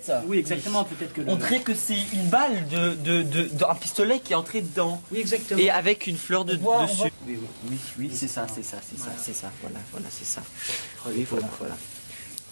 Oui, exactement. Peut-être que. On dirait que c'est une balle d'un pistolet qui est entré dedans. Oui, exactement. Et avec une fleur dessus. Oui, c'est ça. Voilà, c'est ça. Oui, voilà.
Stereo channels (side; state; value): both; inverted; correlation -1.00